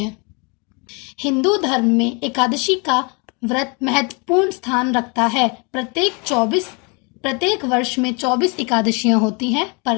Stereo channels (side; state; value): right; quieter; 32.0 dB